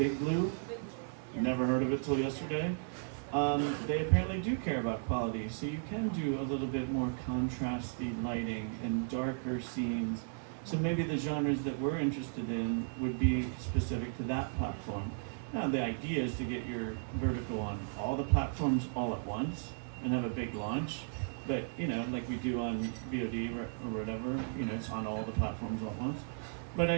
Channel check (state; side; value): silent; left; 54 dB below the other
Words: Blue, never heard of it till yesterday. They apparently do care about quality, so you can do a little bit more contrasty lighting and darker scenes. So maybe the genres that we're interested in would be specific to that platform. Now the idea is to get your vertical on all the platforms all at once and have a big launch. But, you know, like we do on VOD or whatever, you know, it's on all the platforms all at once.